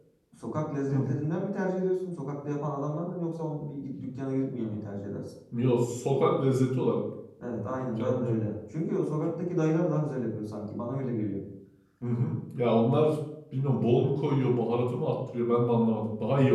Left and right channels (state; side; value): identical; both; correlation 1.00